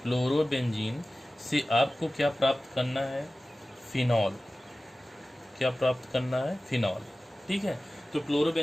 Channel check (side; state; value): both; normal; correlation 0.96